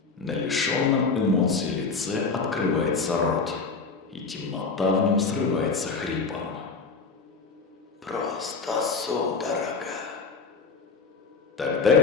На лишенном эмоций лице открывается рот, и темнота в нем срывается хрипом. Просто судорога.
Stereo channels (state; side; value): quieter; right; 4.6 dB